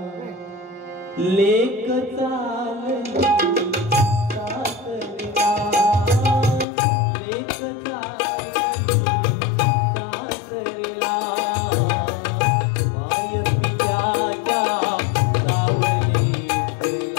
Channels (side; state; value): right; drops out; at 6.7 s